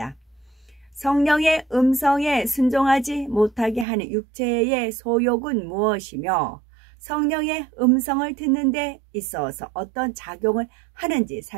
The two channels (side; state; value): left; drops out; at 3.9 s